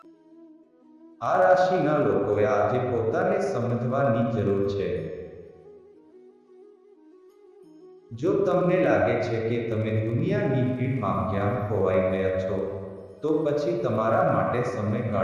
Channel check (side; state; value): both; identical; correlation 1.00